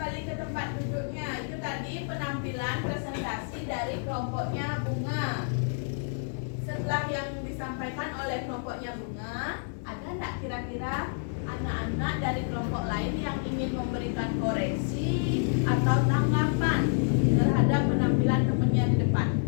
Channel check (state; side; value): silent; right; 57 dB below the other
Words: ke tempat duduknya, itu tadi penampilan presentasi dari kelompoknya Bunga. Setelah yang disampaikan oleh kelompoknya Bunga, ada nggak kira-kira anak-anak dari kelompok lain yang ingin memberikan koreksi atau tanggapan terhadap penampilan temannya di depan?